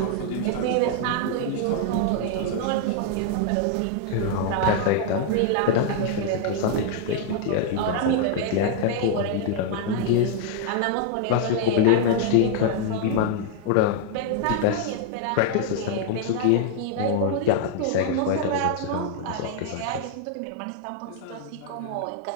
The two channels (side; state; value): both; different; correlation 0.00